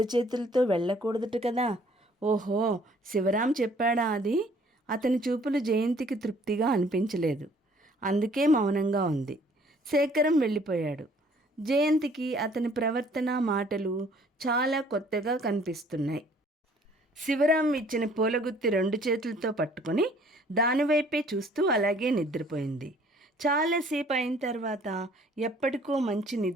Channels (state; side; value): normal; both; correlation 0.58